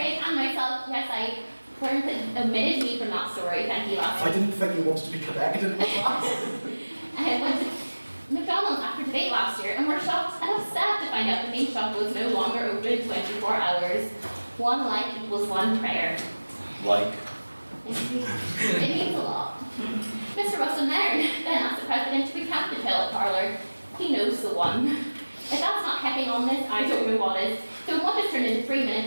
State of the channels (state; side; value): inverted; both; correlation -1.00